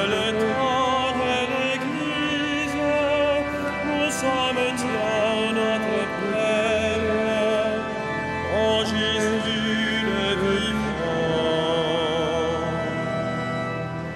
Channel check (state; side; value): identical; both; correlation 1.00